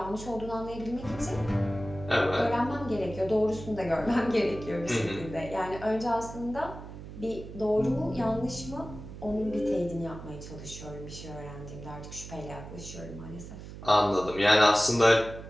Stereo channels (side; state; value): right; noise; hum, 12 dB below the sound